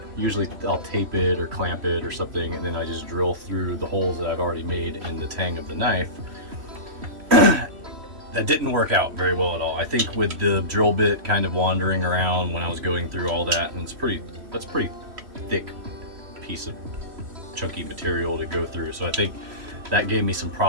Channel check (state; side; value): late; left; 3.0 ms